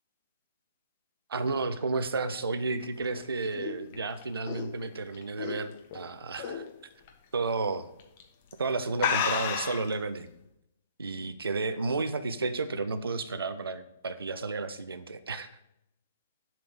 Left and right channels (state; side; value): inverted; both; correlation -0.61